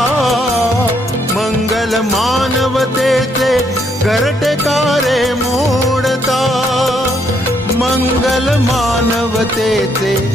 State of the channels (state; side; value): normal; both; correlation 0.72